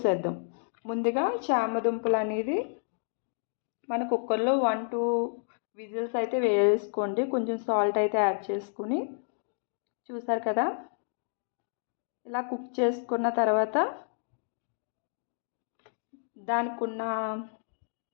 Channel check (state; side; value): silent; right; digital silence